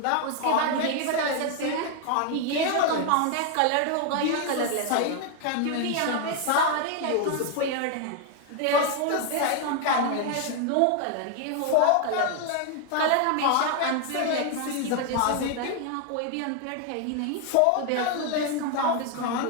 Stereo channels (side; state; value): both; different; correlation 0.01